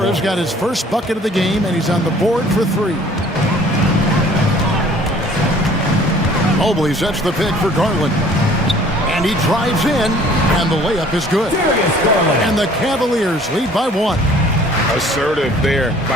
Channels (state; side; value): normal; both; correlation 0.53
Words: got his first bucket of the game, and he's on the board for 3. Mobley sets the pick for Garland. And he drives in, and the layup is good. And the Cavaliers lead by 1. Assertive there